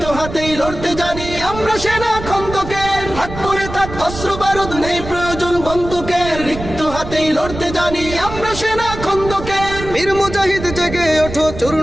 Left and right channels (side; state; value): right; noise; rumble, 10 dB below the sound